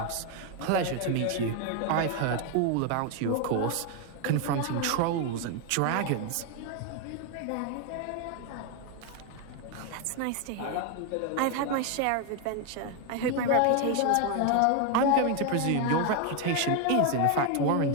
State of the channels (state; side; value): different; both; correlation 0.01